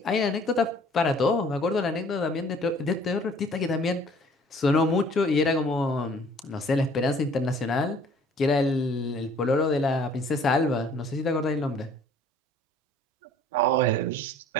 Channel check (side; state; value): both; normal; correlation 0.54